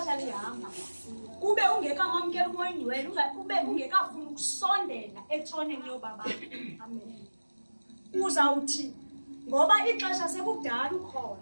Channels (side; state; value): both; inverted; correlation -1.00